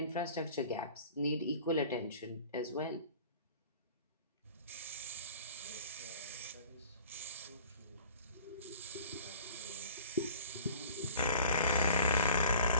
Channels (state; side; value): inverted; both; correlation -0.46